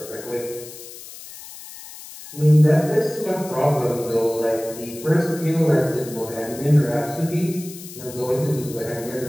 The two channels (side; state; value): left; noise; hiss, 15 dB below the sound